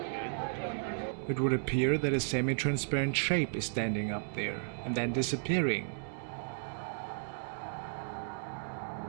It would appear that a semi-transparent shape is standing up there, and then disappearing.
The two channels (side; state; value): left; silent; digital silence